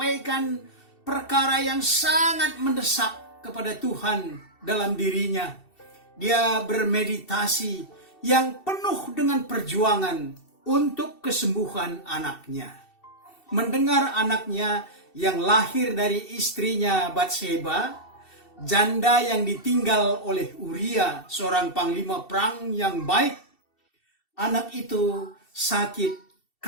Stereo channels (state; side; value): late; right; 2.7 ms